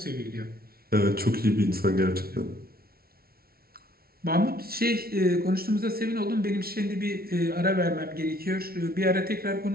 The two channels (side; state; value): left; late; 0.44 ms